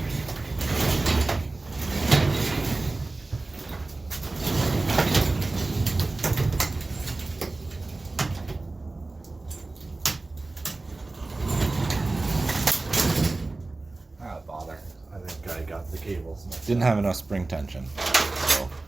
Bother. I think I got the cables. Didn't have enough spring tension, so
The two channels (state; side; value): quieter; left; 3.2 dB